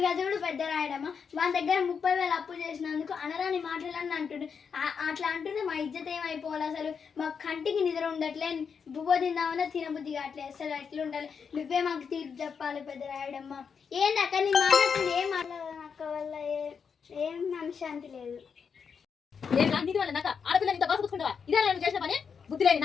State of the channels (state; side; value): quieter; right; 6.3 dB